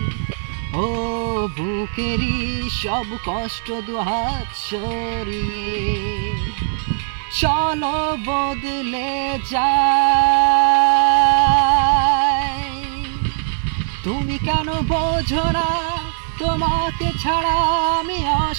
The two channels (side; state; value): left; silent; digital silence